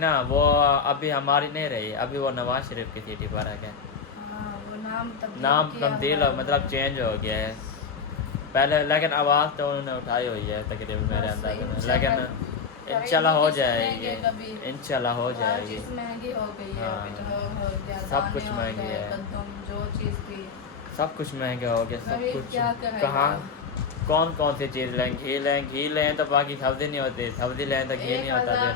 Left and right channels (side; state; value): right; quieter; 5.6 dB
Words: वो अभी हमारी नहीं रही, अभी वो नवाज शरीफ की सिटी पार्क है। हाँ, वो नाम नाम किया तब्दील हुआ हो, मतलब चेंज हो गया है पहले, लेकिन आवाज़ तो उन्होंने उठाई हुई है तकरीबन मेरे बस अंदाजे में। इंशाल्लाह। लेकिन इंशाल्लाह हो जाएगी, कभी इंशाल्लाह हो हर जाएगी। चीज़ महंगी हो गई है। हाँ। पेट्रोल हो गया, सब कुछ दाने हो महंगी गए, है। कद्दूम, जो चीज़ भी सब कुछ महंगा हो गया, सब गरीब कुछ। क्या करेगा? कहाँ कौन सी चीज़ लें? घी लें तो बाकी सब्ज़ी नहीं होती, सब्ज़ी लें तो घी नहीं होता। 1000